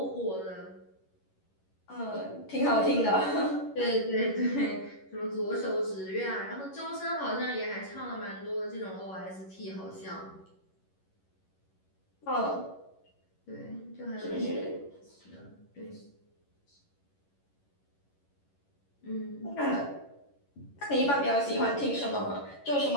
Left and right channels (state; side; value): late; right; 11 ms